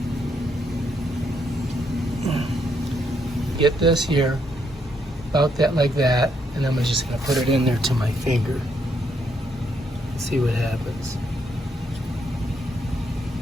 Get this here, about that like that, and I'm just gonna put it in there to my finger. See what happens.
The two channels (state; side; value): normal; both; correlation 0.75